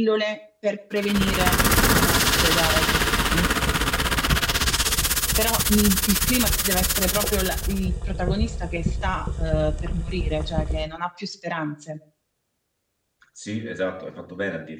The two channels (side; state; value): both; identical; correlation 1.00